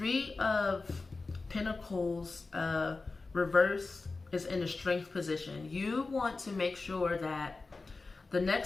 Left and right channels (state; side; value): quieter; right; 3.8 dB